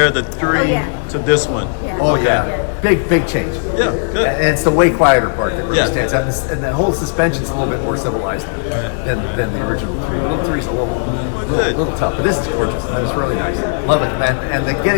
the 3 to this one. Yeah. Oh yeah. Big change. Yeah, good. And it's the way quieter part that really Yeah. stands out. And the whole suspension's a little bit more civilized than the original 3. The little 3's a little tough, but this is gorgeous. That is really nice. Love it. And the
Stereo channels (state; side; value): silent; right; digital silence